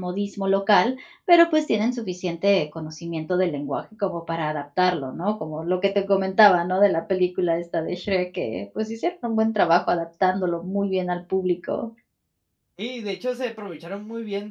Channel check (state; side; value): identical; both; correlation 1.00